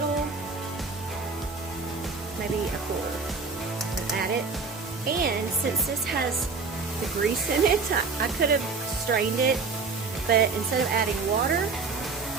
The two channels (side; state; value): left; quieter; 4.5 dB